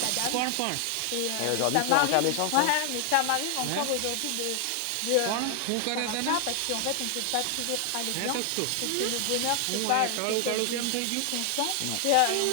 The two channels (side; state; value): both; different; correlation 0.00